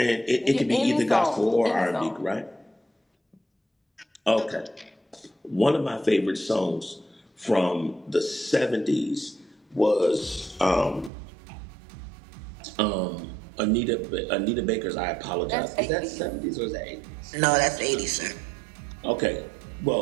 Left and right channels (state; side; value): drops out; left; at 11.1 s